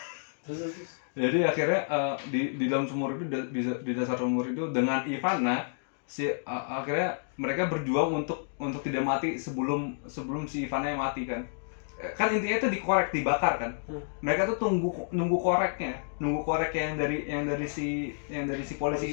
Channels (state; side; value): silent; right; digital silence